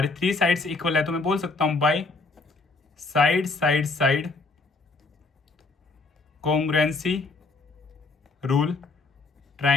3 sides equal है तो मैं बोल सकता हूं by side side side congruency rule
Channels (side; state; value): right; quieter; 3.6 dB